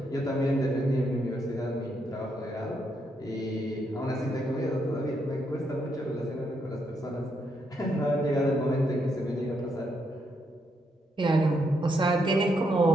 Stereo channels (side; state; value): both; normal; correlation 0.78